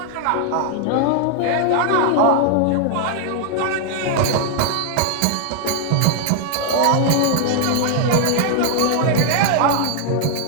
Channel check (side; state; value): both; different; correlation 0.00